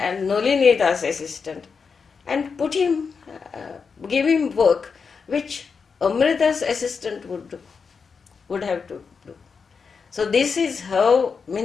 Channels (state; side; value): quieter; right; 5.5 dB